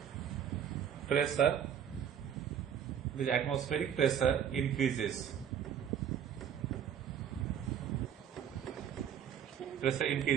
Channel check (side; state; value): left; quieter; 8.8 dB